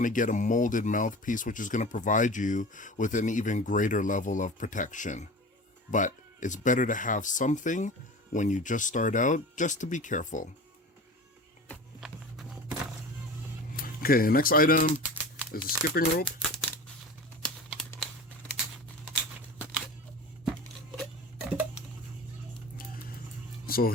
to get a molded mouthpiece, which is going to provide you with an even greater level of protection. But it's better to have something when you just start out, just to be careful. Okay, the next item is a skipping rope. So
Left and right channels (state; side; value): normal; both; correlation 0.35